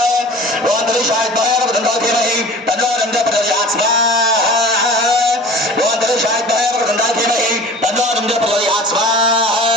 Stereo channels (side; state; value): both; normal; correlation 0.41